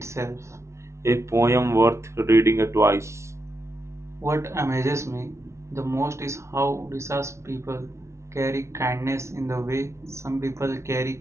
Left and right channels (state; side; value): late; left; 0.13 ms